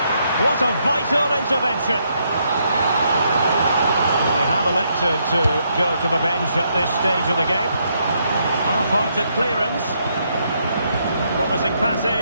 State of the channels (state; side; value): inverted; both; correlation -0.76